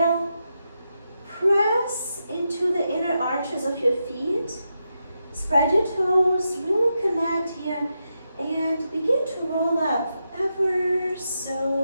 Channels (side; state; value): both; inverted; correlation -0.86